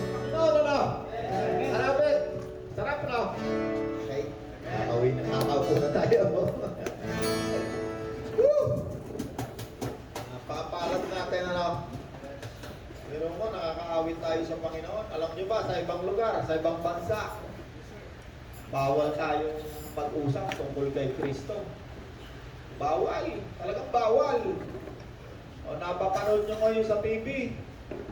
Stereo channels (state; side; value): identical; both; correlation 1.00